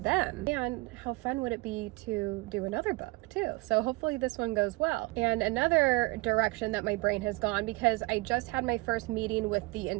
And how fun would it be to do another book too? So hopefully this one goes well. And another direction that my brain has gone, because I just had my first meeting with the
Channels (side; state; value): left; quieter; 24.0 dB